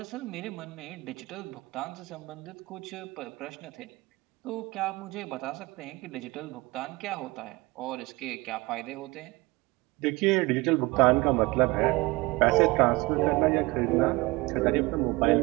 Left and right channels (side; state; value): left; quieter; 22.9 dB